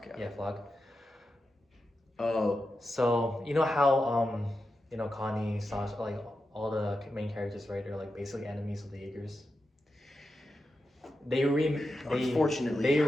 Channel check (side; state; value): both; normal; correlation 0.89